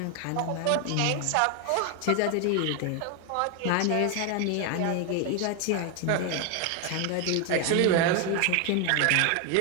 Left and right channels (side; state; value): both; different; correlation 0.01